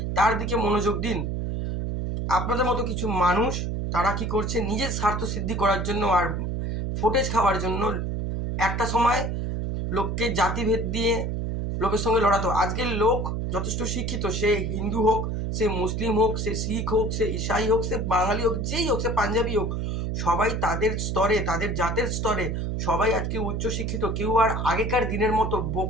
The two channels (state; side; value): noise; right; hum, 2 dB below the sound